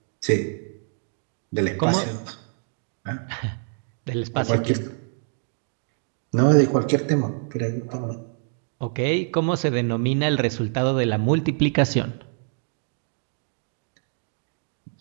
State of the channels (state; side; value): silent; left; 61 dB below the other